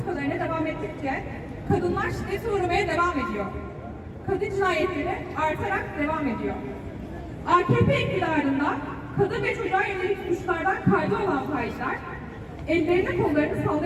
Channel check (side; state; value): both; identical; correlation 1.00